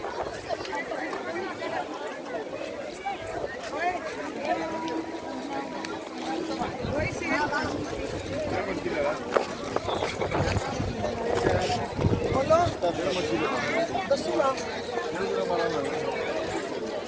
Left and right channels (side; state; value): both; identical; correlation 1.00